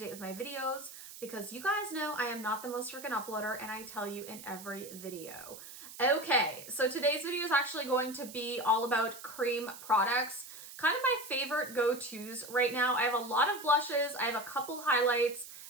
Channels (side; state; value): right; noise; hiss, 14 dB below the sound